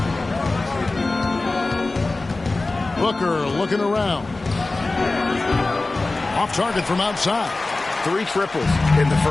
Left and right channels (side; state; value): right; quieter; 3.2 dB